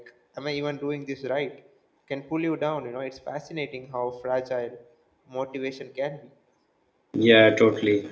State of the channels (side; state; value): both; identical; correlation 1.00